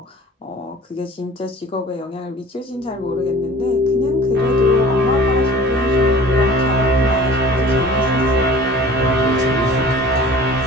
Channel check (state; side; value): normal; both; correlation 0.44